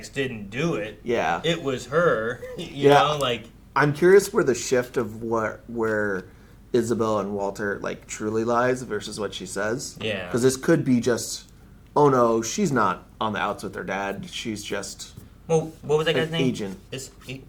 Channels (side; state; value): both; identical; correlation 1.00